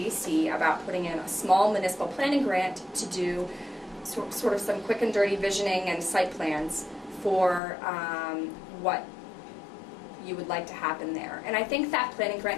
about putting in a small municipal planning grant to do sort of some quick and dirty visioning and site plans for what you would like to happen there. And I think that planning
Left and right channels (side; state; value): right; drops out; at 7.6 s